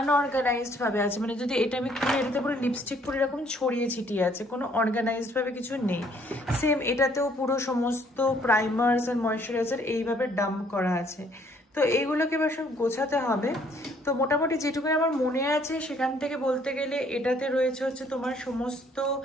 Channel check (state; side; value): normal; both; correlation 0.63